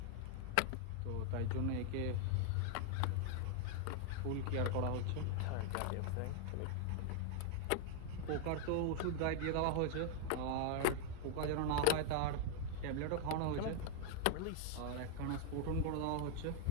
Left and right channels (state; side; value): different; both; correlation 0.00